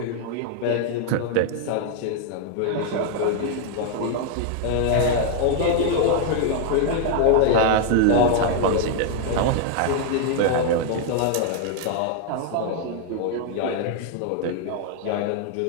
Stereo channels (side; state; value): both; different; correlation 0.00